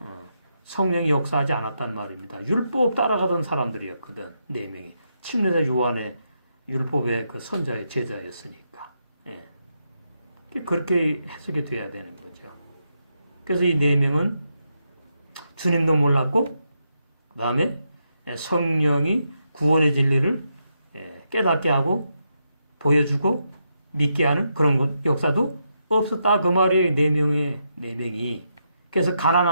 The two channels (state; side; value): inverted; both; correlation -0.82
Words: 성령이 역사하지 않았단 말입니다. 율법 따라가던 사람들이었거든. 네 명이. 침례자 요한의 율법의 그 선자의 제자였으니까. 그렇게 해석이 돼야 되는 거죠. 그래서 이 네 명은 주님도 몰랐고, 그 다음에 성령이 구원의 진리를 깨닫게 하고 보여주고 믿게 하는 그런 역사도 없었다. 그 말이에요. 네 명이. 그래서